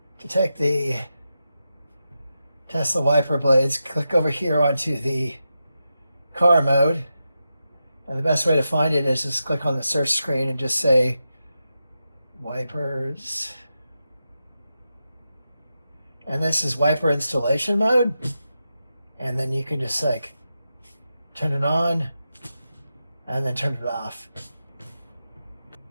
To take the Tesla wiper blades, click over here onto the car mode. And the best way to find it is just click on the search screen and just say wipers. And this is wiper installation mode. And then you can just like turn it on and then turn it off.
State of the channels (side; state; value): both; inverted; correlation -0.89